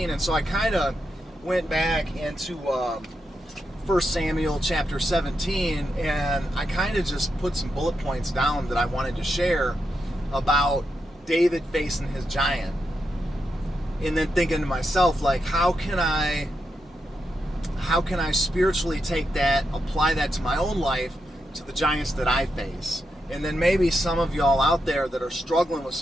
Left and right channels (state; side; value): normal; both; correlation 0.85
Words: And so I kind of went back into 1 Samuel chapter 17, and I kind of just put some bullet points down that I wanted to share about David facing his giant. And then thinking to myself, like, how can I spiritually take that, apply that to my own life, to the giants that I face? And then maybe some of y'all out there that are struggling with